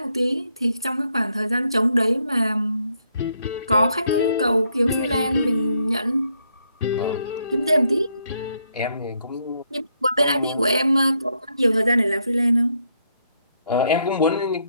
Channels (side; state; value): both; inverted; correlation -0.75